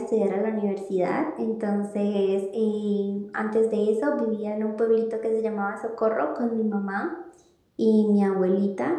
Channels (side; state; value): both; identical; correlation 1.00